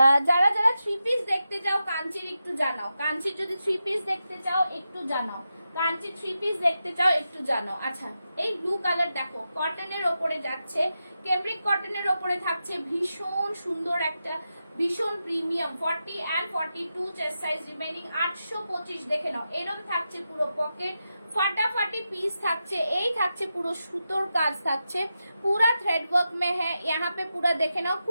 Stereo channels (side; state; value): both; inverted; correlation -0.89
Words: যারা যারা 3 পিস দেখতে চাও কাঞ্চির একটু জানাও, কাঞ্চির যদি 3 পিস দেখতে চাও একটু জানাও, কাঞ্চি 3 পিস দেখতে চাও একটু জানাও। আচ্ছা, এই ব্লু কালার দেখো, কটনের ওপরে যাচ্ছে, ক্যামব্রিক কটনের ওপরে থাকছে, ভীষণ সুন্দর একটা, ভীষণ premium. 40 and 42 chest size remaining, 825। দেখে নাও, এরকম থাকছে পুরো পকেট, ফাটাফাটি পিস থাকছে। এই থাকছে পুরো সুতোর কাজ থাকছে, পুরা থ্রেড ওয়ার্ক মে হ্যাঁ, यहाँ पे পুরা দেখে নাও,